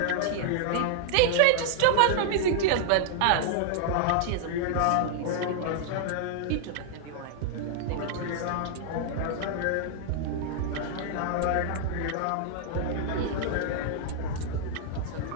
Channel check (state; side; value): different; both; correlation -0.01